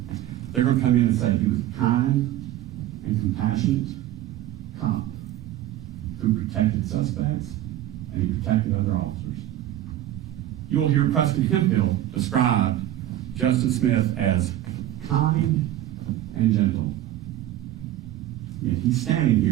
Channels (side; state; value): left; quieter; 13.4 dB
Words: They're going to come in and say he was a kind and compassionate cop who protected suspects and he protected other officers. You will hear Preston Hemphill describe Justin Smith as kind and gentle. Yet he's standing